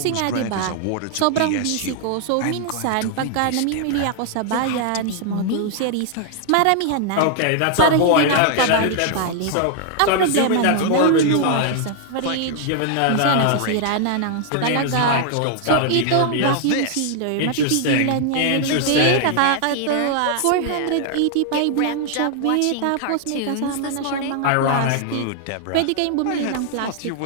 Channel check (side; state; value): both; different; correlation 0.00